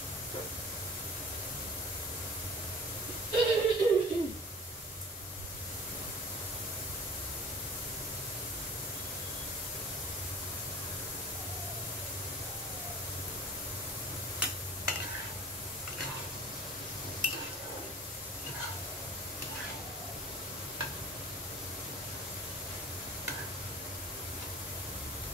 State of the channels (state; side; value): normal; both; correlation 0.43